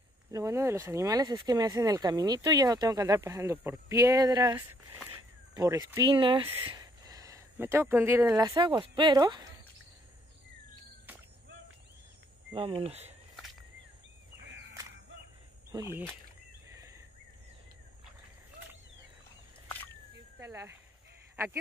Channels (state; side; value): normal; both; correlation 0.68